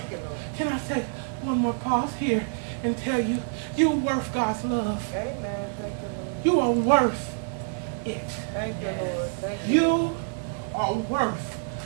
Can I take one more pause here and tell you, you're worth God's love. You are worth it. You are worth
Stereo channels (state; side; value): silent; left; digital silence